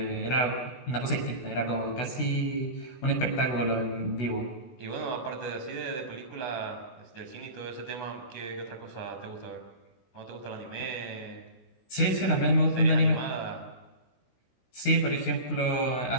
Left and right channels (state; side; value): late; right; 16 ms